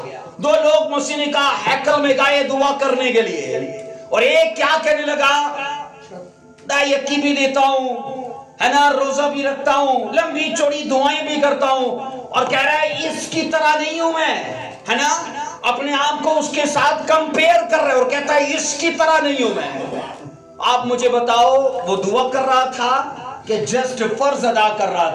दो लोग मसीह ने कहा हैकल में गए दुआ करने के लिए, और एक क्या कहने लगा, यकी भी देता हूं, है ना, रोजा भी रखता हूं, लंबी चौड़ी दुआएं भी करता हूं, और कह रहा है इसकी तरह नहीं हूं मैं, है ना, अपने आप को उसके साथ कंपेयर कर रहे, और कहता है इसकी तरह नहीं हूं मैं। आप मुझे बताओ, वो दुआ कर रहा था कि जस्ट फर्ज अदा कर रहा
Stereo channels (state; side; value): identical; both; correlation 1.00